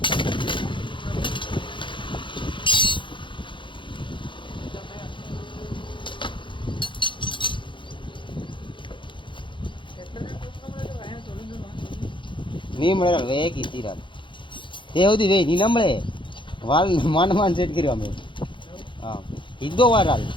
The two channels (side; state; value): right; late; 0.24 ms